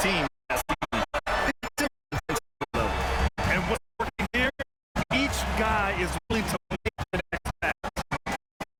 Team. And what's working here? Each guy is willing to make the next pass.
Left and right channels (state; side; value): identical; both; correlation 1.00